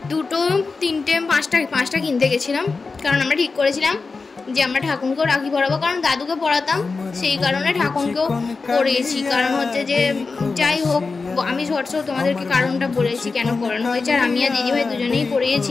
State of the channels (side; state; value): right; quieter; 4.3 dB